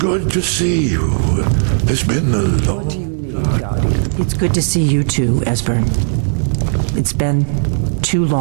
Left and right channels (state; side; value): silent; left; digital silence